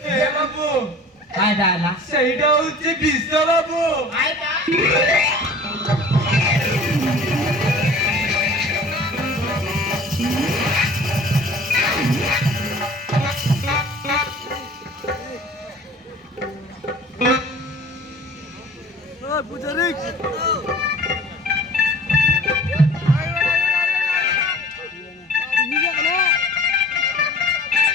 এ বাবু আয় দালা সেইটা হচ্ছে বিস্তা বাবু আয় দা পূজারি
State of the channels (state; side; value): normal; both; correlation 0.45